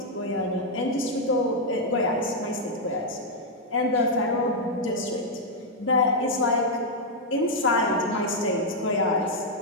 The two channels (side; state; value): both; normal; correlation -0.02